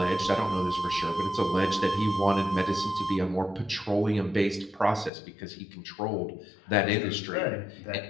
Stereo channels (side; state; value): right; drops out; at 5.1 s